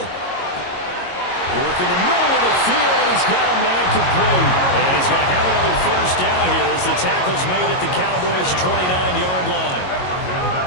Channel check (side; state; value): right; late; 22 ms